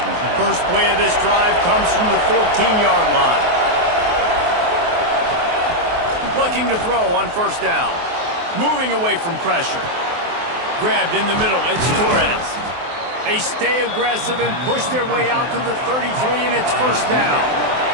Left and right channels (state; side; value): late; left; 23 ms